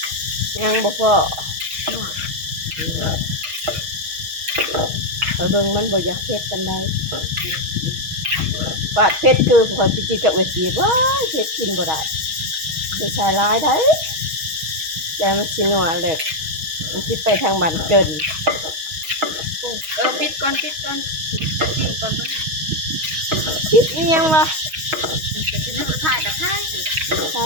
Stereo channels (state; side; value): late; left; 6.3 ms